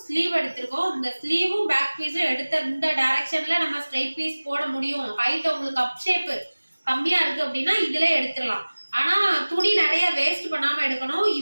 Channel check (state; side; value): inverted; both; correlation -1.00